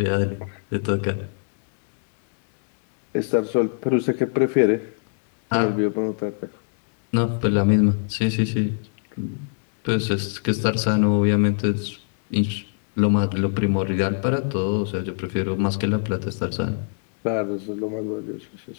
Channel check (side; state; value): right; silent; digital silence